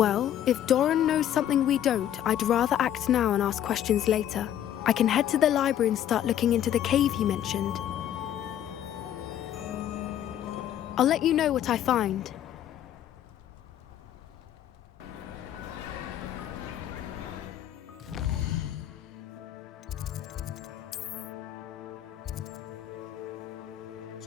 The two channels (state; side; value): quieter; right; 11.0 dB